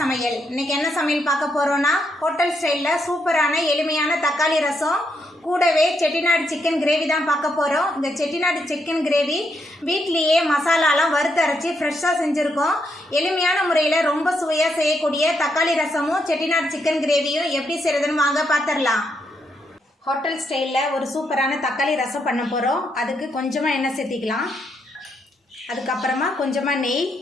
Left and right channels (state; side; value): normal; both; correlation 0.78